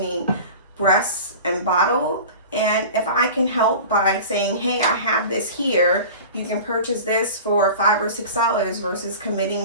breast and bottle. And if I can help by saying, hey, I have this here, you can purchase this for $5 or $6 versus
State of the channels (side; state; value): both; inverted; correlation -0.36